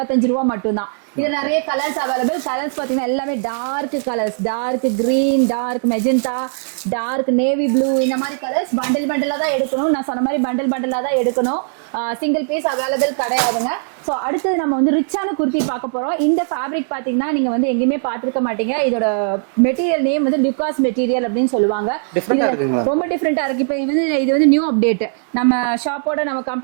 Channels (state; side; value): silent; left; digital silence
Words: ரூபா மட்டும்தான். இது நிறைய கலர்ஸ் அவைலபிள். கலர்ஸ் பாத்தீங்கன்னா எல்லாமே dark colours, dark green, dark magenta, dark navy blue, இந்த மாதிரி கலர்ஸ் பண்டிலா தான் எடுக்கணும். நான் சொன்ன மாதிரி பண்டிலா தான் எடுக்கணும். சிங்கிள் பீஸ் அவைலபிள் கிடையாதுங்க. ஸோ அடுத்து நம்ம வந்து ரிச்சான குர்த்தி பார்க்க போறோம். இந்த ஃபேப்ரிக் பாத்தீங்கன்னா நீங்க வந்து எங்கேயுமே பார்த்திருக்க மாட்டீங்க. இதோட மெட்டீரியல் நேம் வந்து லுகாஸ் மெட்டீரியல் அப்படின்னு சொல்லுவாங்க. இதுல ரொம்ப டிஃப்ரெண்டா இருக்கு. இப்போ இது வந்து நியூ அப்டேட், நம்ம ஷாப்போட நம்ம